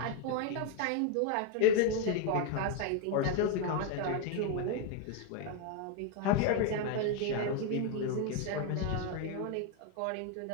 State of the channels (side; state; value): both; different; correlation 0.01